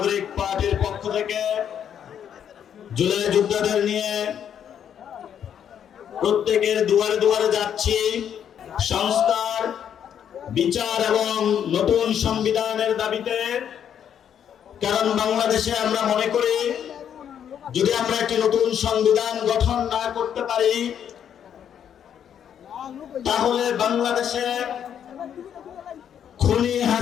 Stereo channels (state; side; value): quieter; right; 8.9 dB